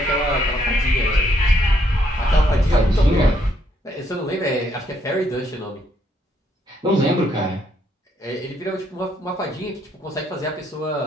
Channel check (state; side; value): normal; both; correlation 0.72